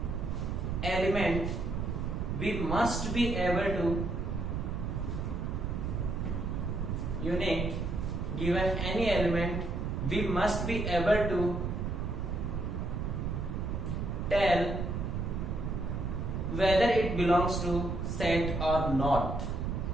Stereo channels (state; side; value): noise; right; rumble, 2 dB below the sound